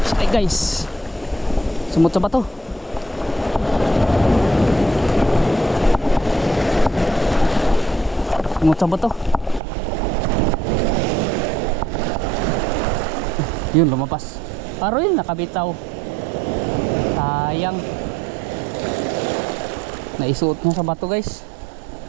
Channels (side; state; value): left; drops out; at 9.6 s